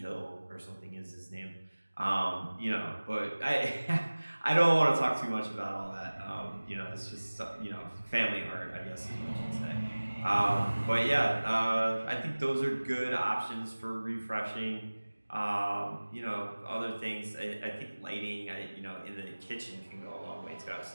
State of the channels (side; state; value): both; inverted; correlation -1.00